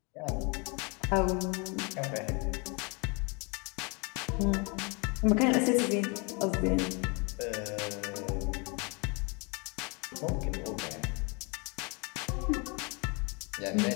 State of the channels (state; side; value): quieter; right; 31.6 dB